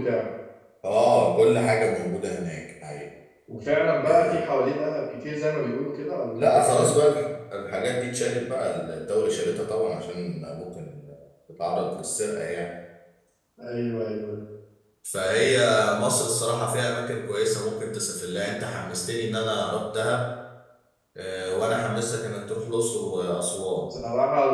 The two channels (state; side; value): identical; both; correlation 1.00